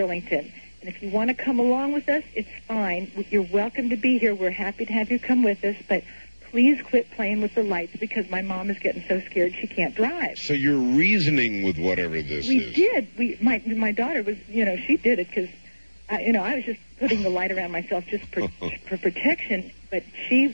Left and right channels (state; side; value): inverted; both; correlation -1.00